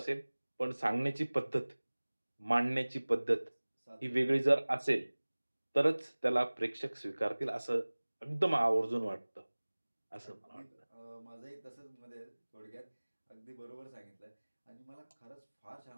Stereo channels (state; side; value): inverted; both; correlation -1.00